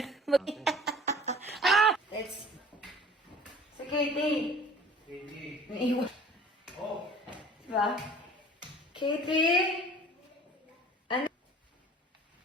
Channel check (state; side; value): normal; both; correlation 0.47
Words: Let's... Si Katie. Katie. Naiwan. Oh. Diba? Katie? Ano?